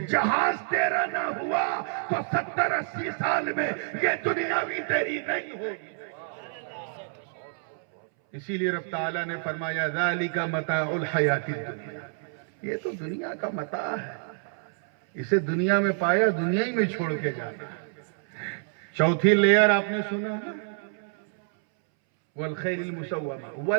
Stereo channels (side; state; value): left; silent; 60 dB below the other